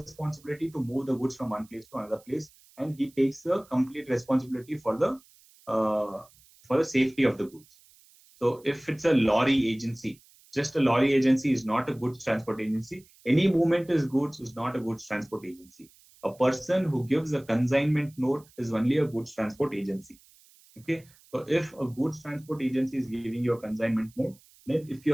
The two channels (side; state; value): right; noise; hiss, 28 dB below the sound